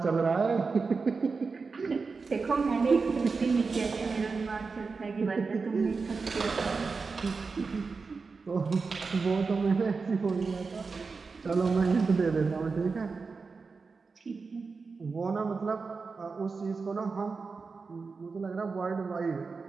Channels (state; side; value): quieter; left; 4.6 dB